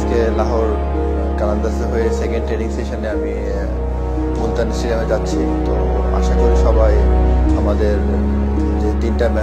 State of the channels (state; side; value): identical; both; correlation 1.00